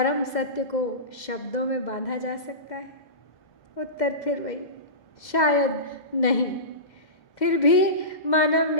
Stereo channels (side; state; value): right; late; 2.0 ms